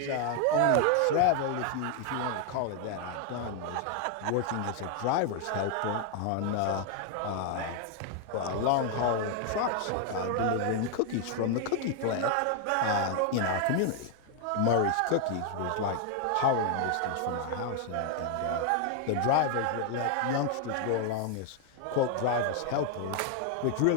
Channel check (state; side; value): different; both; correlation 0.00